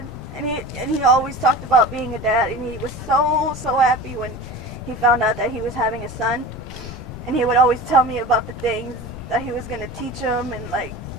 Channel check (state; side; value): noise; left; rumble, 13 dB below the sound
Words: And he always talked about being a dad, and he was so happy when he found out that he was having a son. And he would always tell me about the things that he was going to teach him, and, like,